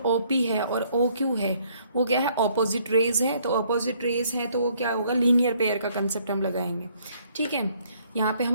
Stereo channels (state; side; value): inverted; both; correlation -0.65